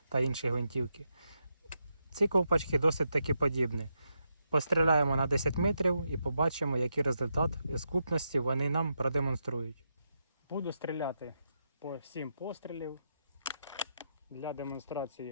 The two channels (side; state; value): both; inverted; correlation -0.83